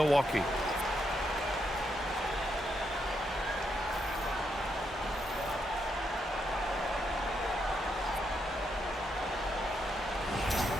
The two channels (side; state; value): both; normal; correlation 0.79